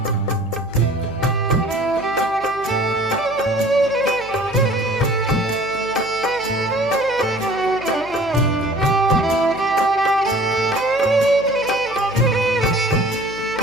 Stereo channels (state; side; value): noise; right; hum, 21 dB below the sound